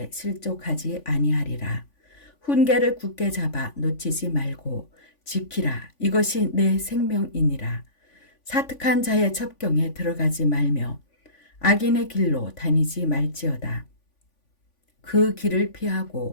실족하지 아니하리라. 훈계를 굳게 잡아 놓치지 말고 지키라. 이것이 내 생명이니라. 사특한 자의 첩경에 들어가지 말며 악인의 길로 다니지 말지어다. 그 길을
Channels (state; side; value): late; right; 3.5 ms